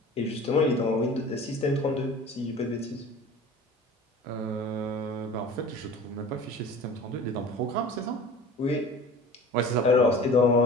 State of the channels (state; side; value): normal; both; correlation 0.40